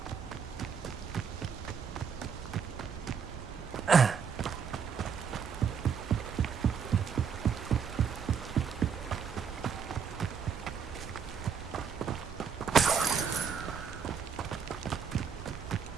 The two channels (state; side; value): quieter; left; 6.7 dB